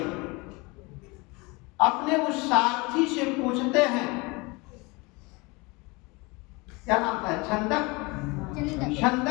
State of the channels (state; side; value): quieter; right; 26.2 dB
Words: अपने उस सारथी से पूछते हैं, क्या नाम था,